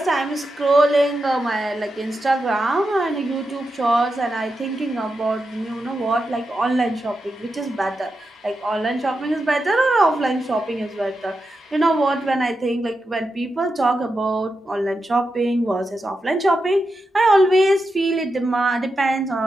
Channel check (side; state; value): both; normal; correlation 0.88